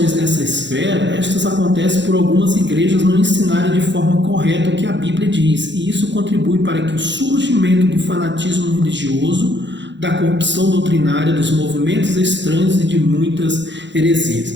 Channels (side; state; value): left; late; 0.53 ms